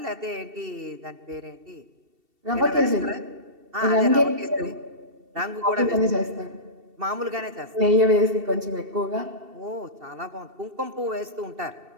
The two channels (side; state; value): left; late; 2.7 ms